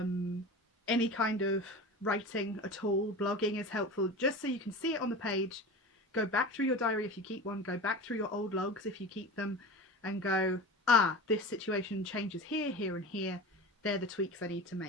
kind of writing at all, blogging is helpful, just so you can see it on the page. Go back through your diary if you keep one, go back through your old logs if you keep them, and go, ah, this situation changes here, here and here. They're the tweaks I need to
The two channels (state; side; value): normal; both; correlation 0.31